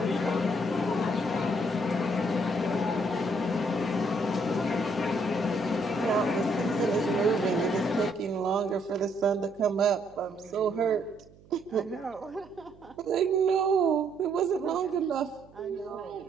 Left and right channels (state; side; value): noise; right; hum, 25 dB below the sound